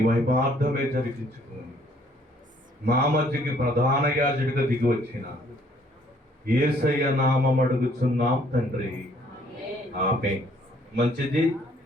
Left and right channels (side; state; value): both; normal; correlation 0.63